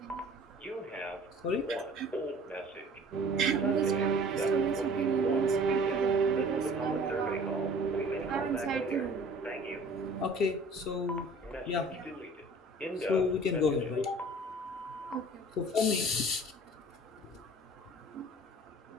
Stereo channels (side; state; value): both; normal; correlation 0.48